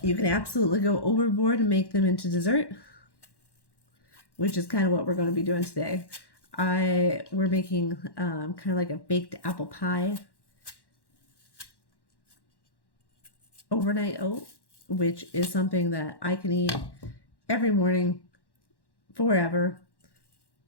You can absolutely go overboard and make them into dessert, which is kind of what we're going to be doing today. We're making kind of like a baked apple pie overnight oat, which is something that I can eat every morning forever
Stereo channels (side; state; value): right; late; 1.1 ms